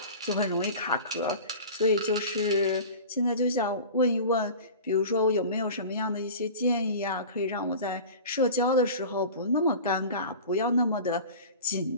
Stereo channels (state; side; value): inverted; both; correlation -0.36